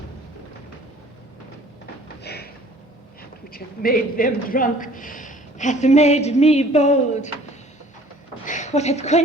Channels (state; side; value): normal; both; correlation 0.53